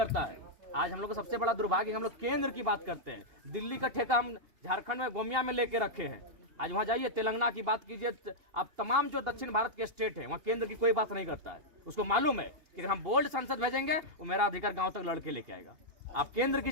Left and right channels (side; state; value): left; late; 2.8 ms